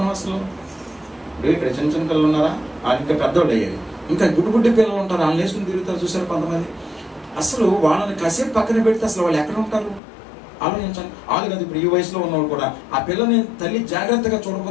అసలు? ఇక్కడ చిన్న పిల్లలు ఉన్నారా, వాళ్ళు ఇంకా పెద్దోళ్ళు అయ్యారు. ఇంకా గుడ్డి పిల్లలు ఉంటారు, వాళ్ళని వేసుకుని తిరుగుతారు చూసారు కొంతమంది. అసలు వాళ్ళని కాసేపు పక్కన పెడితే అసలు వాళ్ళు ఎక్కడ ఉంటారు ఆలోచించండి. వాళ్ళు కాదు, ఇప్పుడు ఈ వయసులో ఉన్నవాళ్ళు కూడా ఆ పిల్లని తల్లి జాగ్రత్తగా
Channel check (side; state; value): right; drops out; at 10.0 s